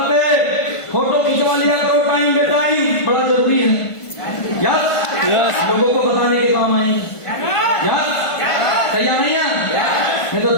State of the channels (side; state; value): right; late; 1.5 ms